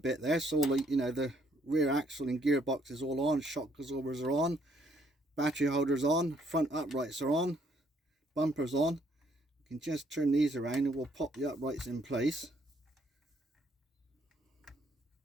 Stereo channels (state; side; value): normal; both; correlation 0.68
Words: there. So all the, you know, the rear axle and gearbox is all on, shock absorbers are on, battery holders on, front uprights are on, bumpers on. You can just turn these around and we'll pop the uprights in place.